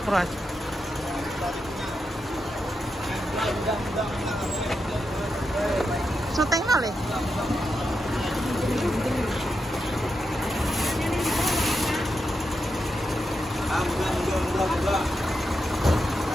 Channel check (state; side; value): normal; both; correlation 0.86